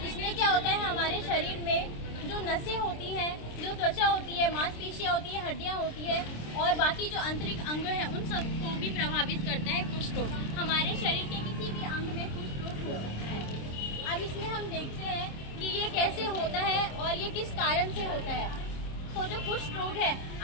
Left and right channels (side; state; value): right; late; 26 ms